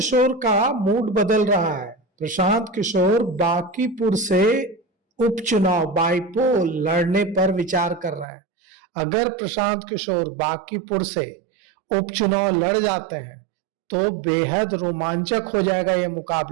का मूड बदल रहा है। प्रशांत किशोर बांकीपुर से उपचुनाव बाईपोल लड़ने पर विचार कर रहे हैं। अगर प्रशांत किशोर बांकीपुर से उपचुनाव लड़ जाते हैं तो बेहद रोमांचक हो जाएगा यह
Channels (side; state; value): left; drops out; at 8.2 s